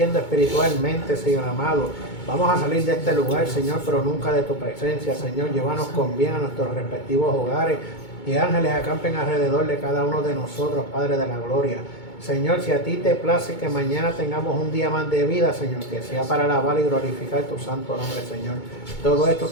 espiritualmente, Señor amado. Vamos a salir de este lugar, Señor, pero nunca de tu presencia, Señor. Llévanos con bien a nuestros respectivos hogares y ángeles acampen alrededor de cada uno de nosotros, Padre de la gloria. Señor, si a ti te place que mañana tengamos un día más de vida, Señor, que sea para alabar y glorificar tu santo nombre, Señor. Todo esto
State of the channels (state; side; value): late; right; 2.2 ms